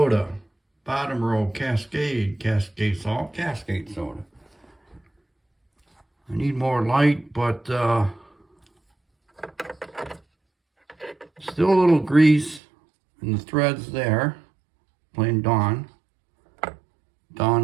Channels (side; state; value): left; drops out; at 12.6 s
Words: Bottom row, Cascade salt, Cascade soda. I need more light, but still a little grease in the threads there. Plain Dawn